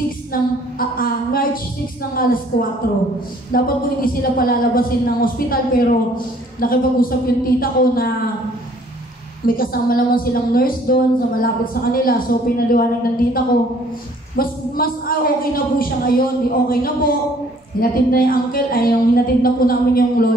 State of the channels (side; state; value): both; normal; correlation 0.59